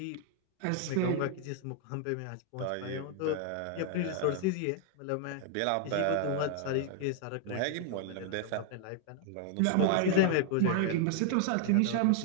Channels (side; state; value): both; different; correlation 0.00